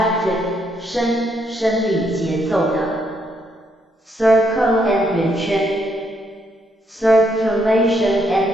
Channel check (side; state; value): both; normal; correlation 0.74